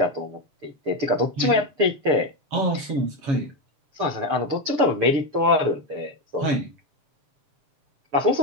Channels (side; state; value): left; late; 6.8 ms